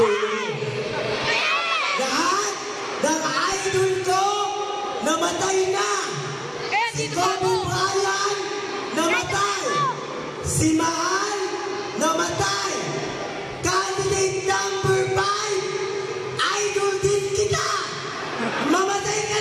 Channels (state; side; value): identical; both; correlation 1.00